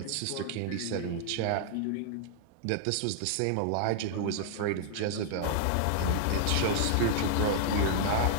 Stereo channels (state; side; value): different; both; correlation -0.01